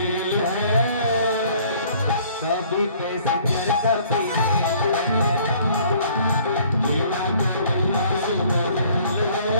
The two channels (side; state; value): both; inverted; correlation -0.56